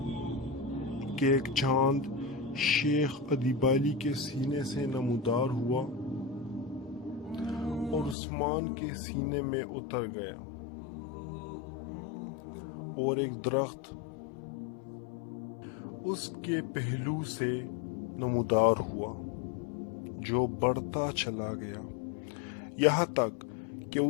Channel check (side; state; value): right; drops out; at 8.2 s